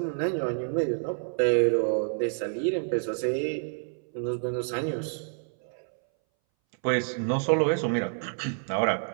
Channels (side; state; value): left; silent; 59 dB below the other